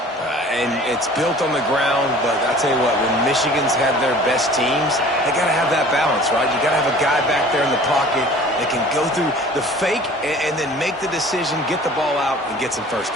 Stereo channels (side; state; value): both; normal; correlation 0.47